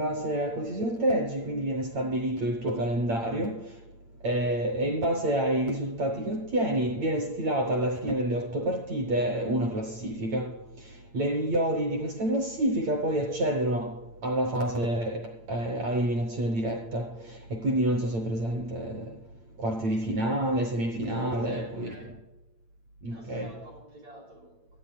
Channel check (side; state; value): left; late; 8.8 ms